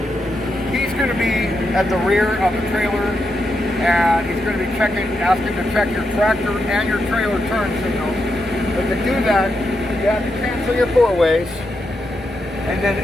he's going to be at the rear of the trailer, and he's going to be asking to check your tractor and your trailer turn signals. But to do that, you have to cancel your four-ways, and then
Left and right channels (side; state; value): both; normal; correlation 0.84